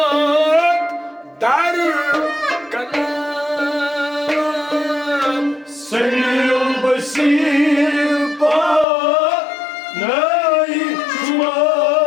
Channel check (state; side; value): drops out; right; at 8.8 s